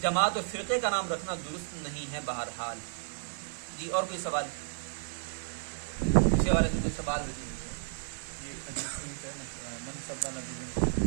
جماعت اور فرقے کا نام رکھنا درست نہیں ہے بہرحال. جی اور کوئی سوال اس حوالے سے؟ کوئی سوال ہو؟ یہ حدیث ہے منصب نبی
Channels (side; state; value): left; silent; 56 dB below the other